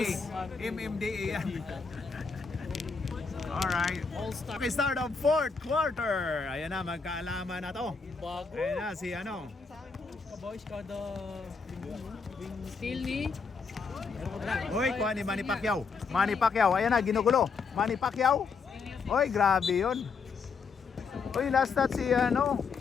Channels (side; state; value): right; quieter; 5.1 dB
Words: MMDA yan. Alright. All-Star. Okay, start of fourth quarter. Ayan na, magkaalaman na to. Bago. Ayan na, si ano. Boys, kada still ni Uy, kuha ni Manny Pacquiao. Manny Pacquiao, ayan na, ginugulo. Manny Pacquiao. Uy, grabe yun. Uy, last shot si ano,